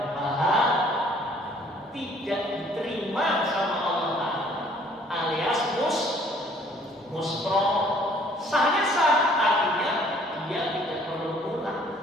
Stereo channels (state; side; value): normal; both; correlation 0.58